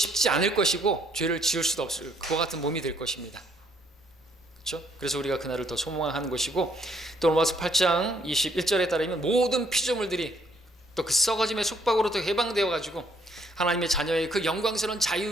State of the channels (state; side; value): normal; both; correlation 0.67